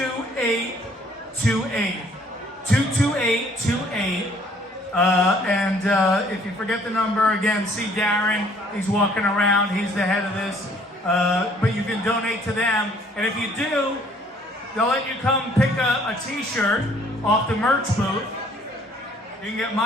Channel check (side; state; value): both; normal; correlation 0.60